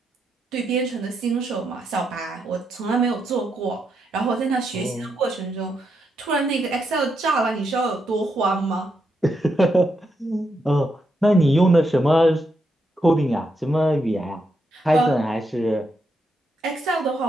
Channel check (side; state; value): both; normal; correlation 0.82